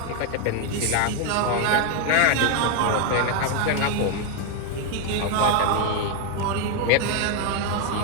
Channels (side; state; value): both; different; correlation 0.01